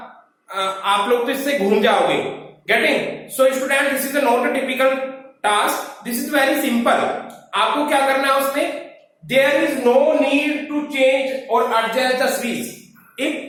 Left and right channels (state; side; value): identical; both; correlation 1.00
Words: आप लोग तो इससे घूम जाओगे. Getting? So student, this is not a typical task, this is very simple. आपको क्या करना है उसमें? There is no need to change और adjust the series.